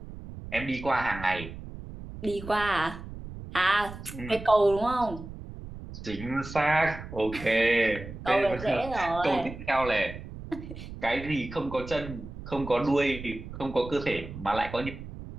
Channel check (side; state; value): right; noise; rumble, 12 dB below the sound